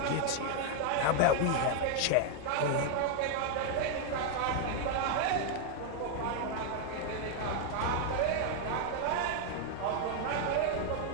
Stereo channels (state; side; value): different; both; correlation 0.00